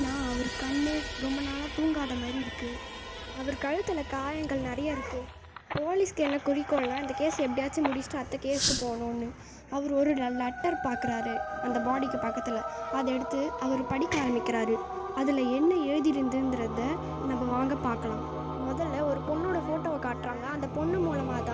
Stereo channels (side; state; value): both; identical; correlation 1.00